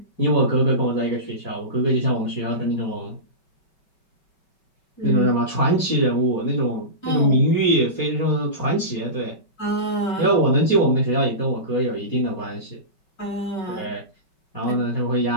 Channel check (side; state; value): right; late; 5.3 ms